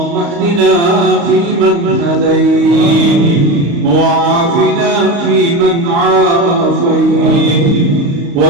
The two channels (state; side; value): late; left; 35 ms